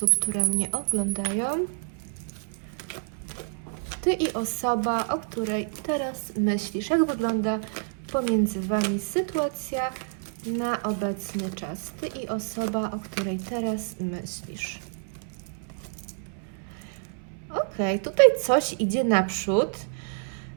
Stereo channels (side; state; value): left; silent; 59 dB below the other